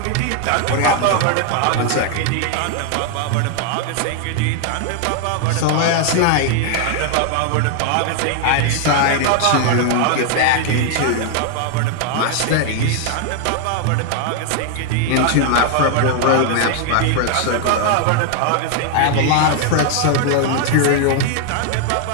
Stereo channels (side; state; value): both; different; correlation 0.00